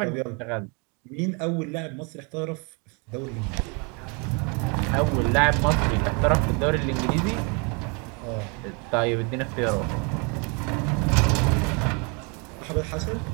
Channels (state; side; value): quieter; left; 32.9 dB